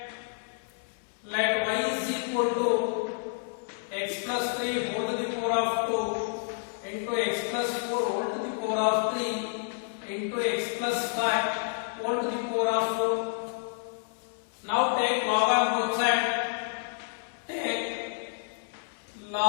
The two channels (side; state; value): right; silent; 58 dB below the other